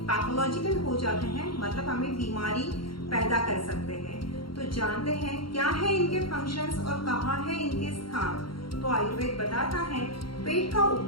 पैथोलॉजिकल हो जाते हैं, मतलब हमें बीमारी पैदा कर सकते हैं। तो जानते हैं क्या है इनके फंक्शंस और कहाँ है इनके स्थान। तो आयुर्वेद बताता है पेट का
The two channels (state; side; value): late; right; 0.73 ms